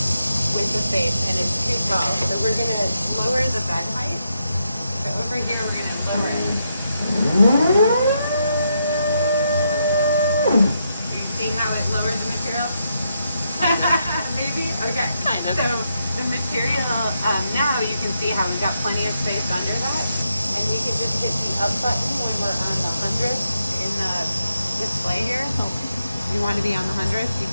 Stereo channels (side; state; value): both; inverted; correlation -0.81